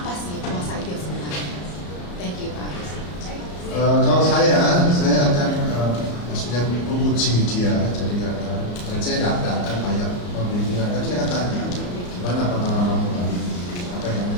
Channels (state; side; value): late; right; 34 ms